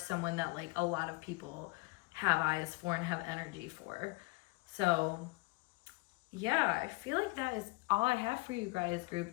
that like a lot of people have eyes for and have energy for. So yeah, I feel like that is all I have for you guys, group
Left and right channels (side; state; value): right; quieter; 25.3 dB